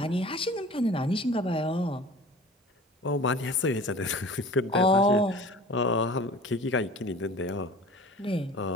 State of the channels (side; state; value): both; normal; correlation 0.42